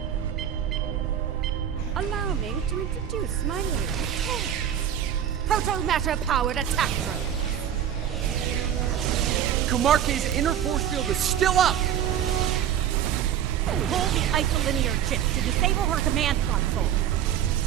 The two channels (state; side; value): quieter; left; 9.8 dB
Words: Allow me to introduce my latest proto-matter-powered attack drone. Kumarke's inner force field is still up! Pull the isolinear chip to disable her command console.